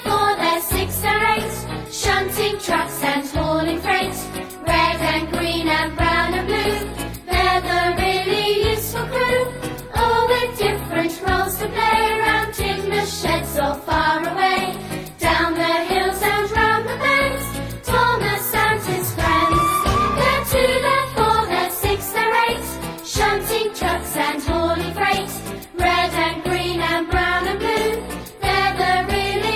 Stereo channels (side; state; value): both; identical; correlation 1.00